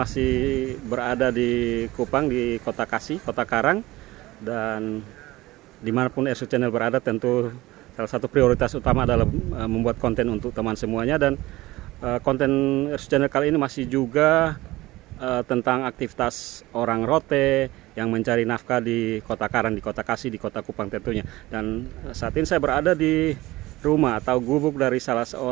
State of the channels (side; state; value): left; quieter; 18.7 dB